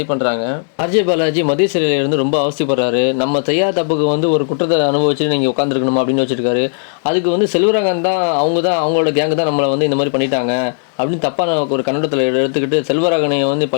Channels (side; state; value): right; silent; digital silence